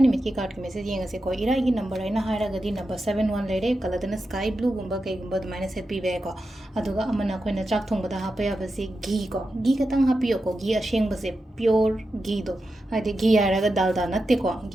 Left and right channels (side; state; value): both; normal; correlation 0.90